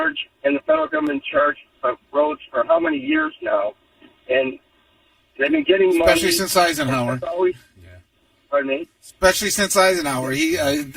and the federal government in charge of roads for how many years now? And they've been getting money. Especially since Eisenhower. Pardon me? Especially since Eisenhower. He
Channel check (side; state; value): both; identical; correlation 1.00